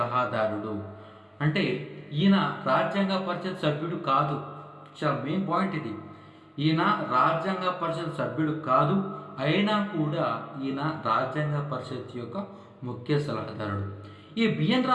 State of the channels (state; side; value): identical; both; correlation 1.00